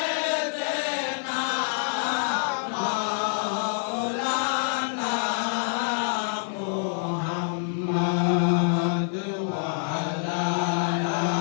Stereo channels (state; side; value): silent; right; digital silence